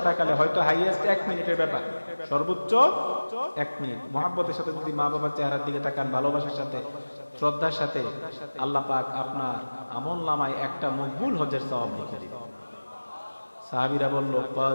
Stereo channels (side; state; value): both; inverted; correlation -1.00